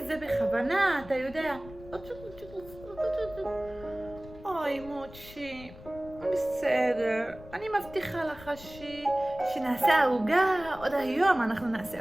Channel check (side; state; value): left; noise; rumble, 18 dB below the sound